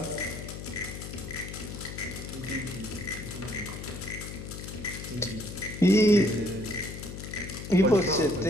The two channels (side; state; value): left; noise; hum, 9 dB below the sound